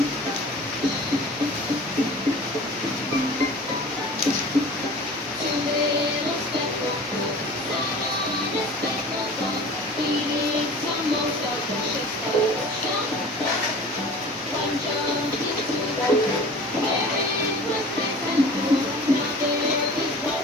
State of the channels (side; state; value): both; normal; correlation 0.41